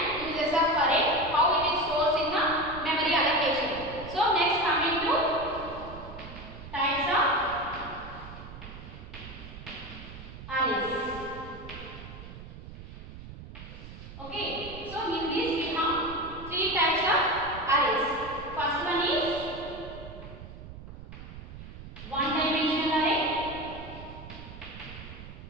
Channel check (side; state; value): right; noise; rumble, 13 dB below the sound